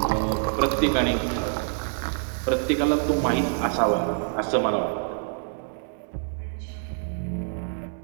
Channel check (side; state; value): left; silent; digital silence